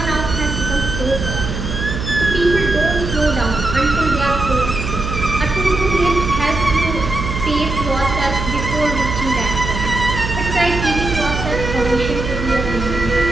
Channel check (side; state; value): right; noise; hum, 5 dB below the sound